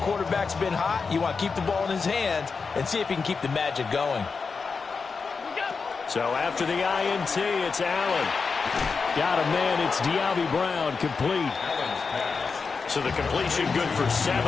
quarterback's been hot. You want to keep the ball in his hands and see if he can keep the magic going. So after the INT, it's Allen. Got a man. It's De'Ami Brown complete. So the completion good for 7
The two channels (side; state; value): right; quieter; 4.9 dB